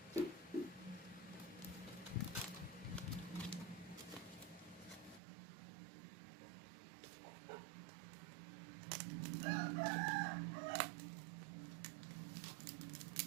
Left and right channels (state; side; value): drops out; left; at 5.2 s